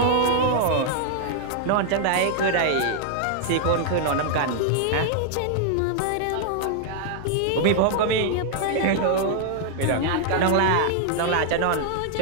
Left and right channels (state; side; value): different; both; correlation -0.01